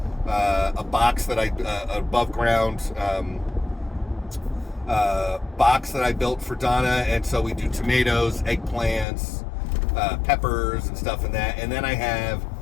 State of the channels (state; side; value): drops out; right; at 9.1 s